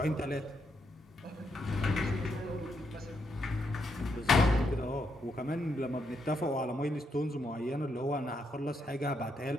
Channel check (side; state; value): both; normal; correlation 0.79